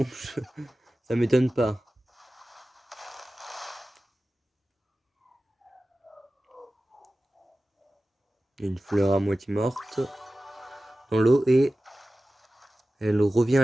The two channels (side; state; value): both; normal; correlation 0.95